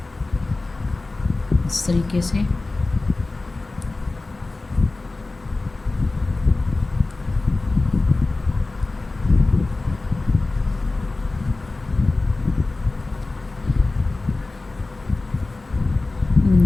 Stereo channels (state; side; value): quieter; right; 3.3 dB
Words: इस तरीके से